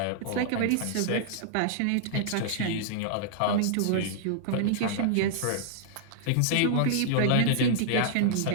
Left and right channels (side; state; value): both; different; correlation -0.01